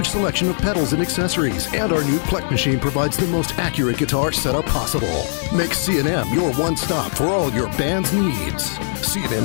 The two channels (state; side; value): silent; right; digital silence